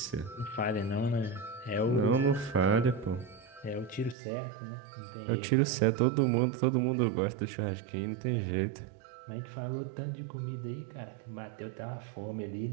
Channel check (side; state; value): left; drops out; at 4.2 s